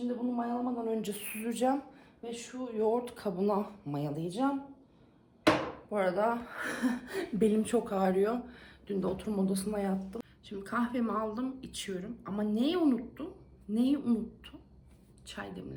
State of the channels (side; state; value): both; identical; correlation 1.00